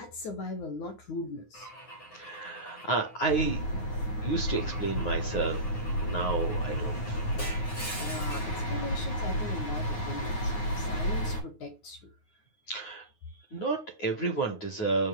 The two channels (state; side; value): late; right; 9.5 ms